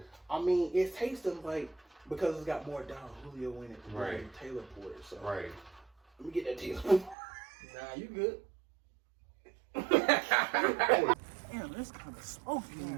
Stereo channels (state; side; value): drops out; left; at 7.2 s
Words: I mean, it's tasting like, because it's got more Don Julio in it right. than Taylor Port. So right. Let me get that Taylor Port. Nah, you good. Damn, that's kind of smoky in